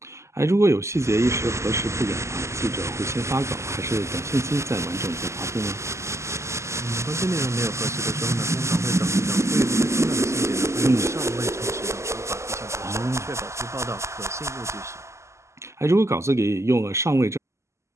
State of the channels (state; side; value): late; left; 0.13 ms